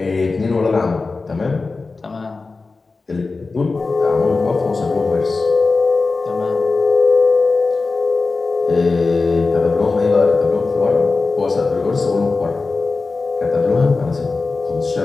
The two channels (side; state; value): right; quieter; 3.9 dB